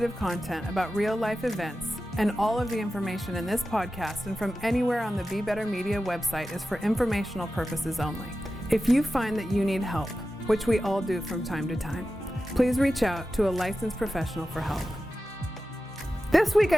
content about real-life events, and all of the information in this podcast and from anywhere on the Be Better Media website is for informational purposes only. If you find that you need help, which we all do from time to time, please reach out to a licensed professional for help. This week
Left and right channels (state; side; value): normal; both; correlation 0.93